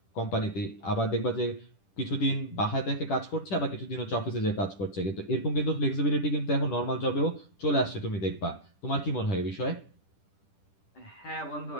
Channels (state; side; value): late; right; 10 ms